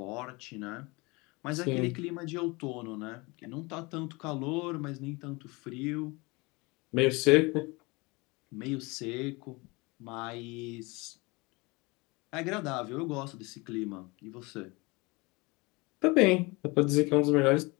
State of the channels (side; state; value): right; quieter; 25.6 dB